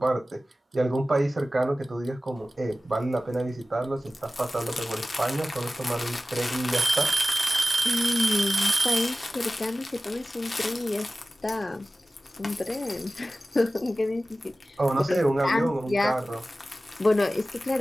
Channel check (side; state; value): both; normal; correlation 0.96